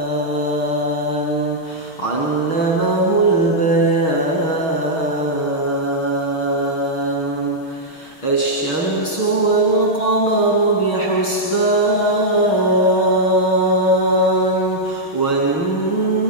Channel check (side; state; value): right; late; 6.4 ms